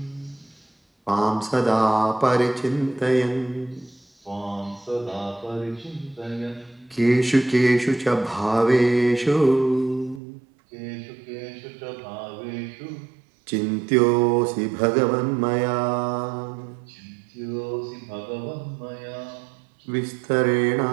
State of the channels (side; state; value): left; drops out; at 10.2 s